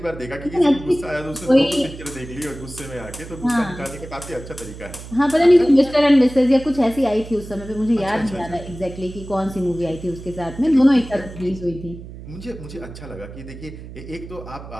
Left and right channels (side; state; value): right; noise; hum, 14 dB below the sound